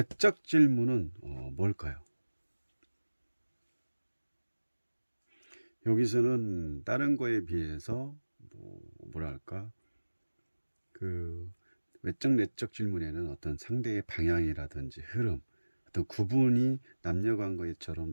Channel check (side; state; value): both; inverted; correlation -1.00